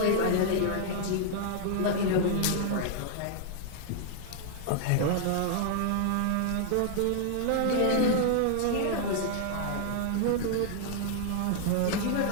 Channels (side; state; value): both; different; correlation -0.01